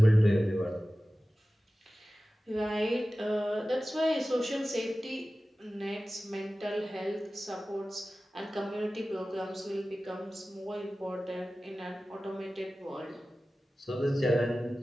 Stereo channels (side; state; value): both; normal; correlation 0.96